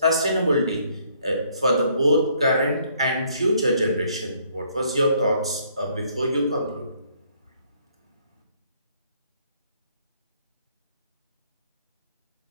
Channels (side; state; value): both; inverted; correlation -0.65